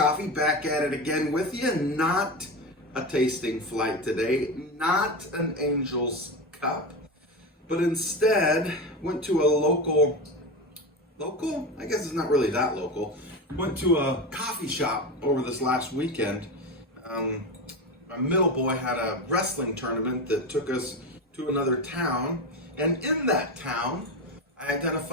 back at it again with you. Not a tasting flight today, not an Angel's Cup, but instead went to a local, I guess it's not really that local, went to a coffee shop over this last weekend. My middle boy had a wrestling tournament that took us to another town, and in that town, I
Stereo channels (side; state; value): both; normal; correlation 0.21